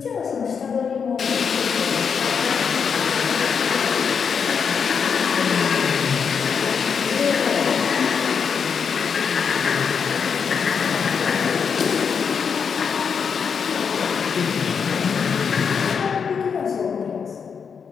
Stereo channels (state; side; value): quieter; right; 6.4 dB